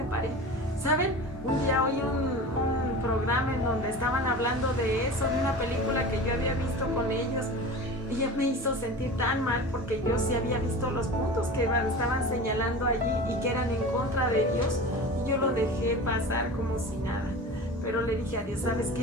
paré? ¿Saben? Un día oí un programa en donde estaban hablando de eso, de una película que yo había visto con ellos, y me hizo sentir tan mal porque yo sí había visto los puntos que estaban señalando allí y que eran en contra de Dios, y yo lo dejé pasar como si nada. Pero le dije a Dios, ¿sabes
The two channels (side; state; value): both; normal; correlation 0.33